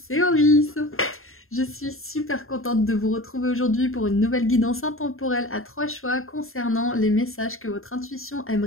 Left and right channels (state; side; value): late; right; 0.61 ms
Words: Auris. Je suis super contente de vous retrouver aujourd'hui pour une nouvelle guidance intemporelle à 3 choix concernant les messages que votre intuition